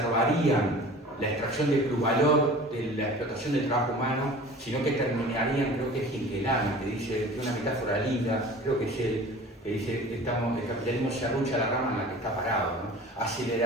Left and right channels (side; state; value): both; normal; correlation 0.42